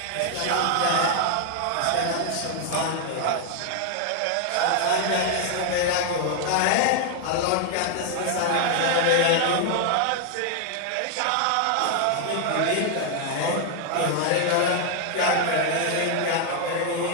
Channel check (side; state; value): both; different; correlation 0.00